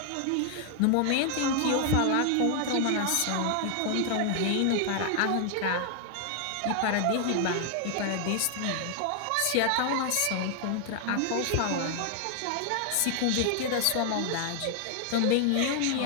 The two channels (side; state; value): both; different; correlation 0.00